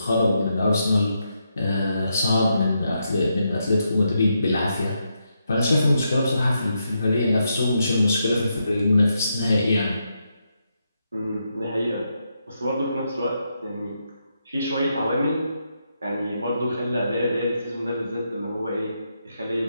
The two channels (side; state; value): both; inverted; correlation -0.82